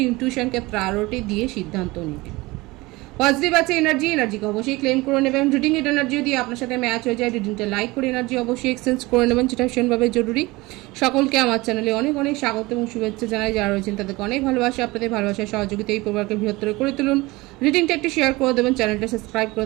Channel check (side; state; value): left; quieter; 21.7 dB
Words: ইনটিউশনকে প্রায়োরিটি দিয়ে সিদ্ধান্ত নেবেন। পজিটিভ আছে এনার্জিকে অবশ্যই ক্লেম করে নেবেন। রিডিং এর এনার্জি যদি আপনার সাথে ম্যাচ হয়ে যায়, রিডিংটা লাইক করে এনার্জি অবশ্যই এক্সচেঞ্জ করে নেবেন, যেটা ভীষণভাবে জরুরি। সকলকে আমার চ্যানেলে অনেক অনেক স্বাগত এবং শুভেচ্ছা জানাই। যারা রয়েছেন তাদেরকে অনেক ভালোবাসা, আপনাদের ভালোবাসার সহযোগিতা এই পরিবারকে বৃহত্তর করে তুলুন। রিডিংটা একটু শেয়ার করে দেবেন, চ্যানেলটা সাবস্ক্রাইব করে